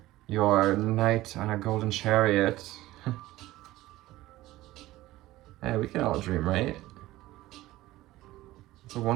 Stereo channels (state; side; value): quieter; left; 16.9 dB